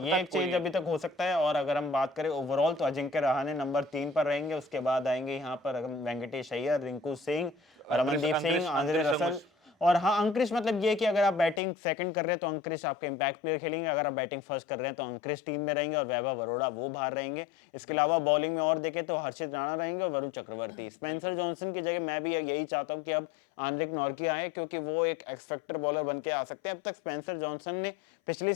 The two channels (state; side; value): drops out; right; at 11.6 s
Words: एक चेंज अभी तक हो सकता है। और अगर हम बात करें ओवरऑल तो अजिंक्य रहाणे नंबर 3 पर रहेंगे। उसके बाद आएंगे यहाँ पर वेंकटेश अय्यर, रिंकू सिंह, रमनदीप सिंह, आंद्रे रसल। और हाँ, अंक्रिश मतलब ये कि अगर आप बैटिंग सेकंड कर रहे हैं तो अंक्रिश आपके इंपैक्ट प्लेयर खेलेंगे, अगर आप बैटिंग फर्स्ट कर रहे हैं तो अंक्रिश टीम में रहेंगे और वैभव अरोड़ा वो बाहर रहेंगे। इसके अलावा बॉलिंग में और देखें तो हर्षित राणा रहेंगे और वरुण चक्रवर्ती। स्पेंसर जॉनसन की जगह मैं भी यही चाहता हूँ कि अब आंद्रिक नॉर्किया आए, क्योंकि वो एक एक्सपेक्टर बॉलर बन के आ सकते हैं। अब तक स्पेंसर जॉनसन ने पिछले